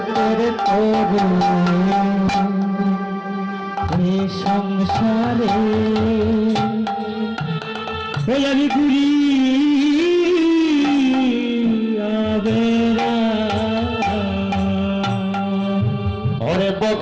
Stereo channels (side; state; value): both; identical; correlation 1.00